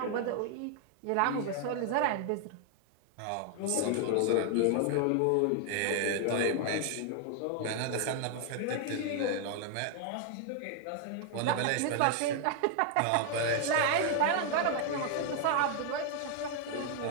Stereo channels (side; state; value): both; different; correlation 0.00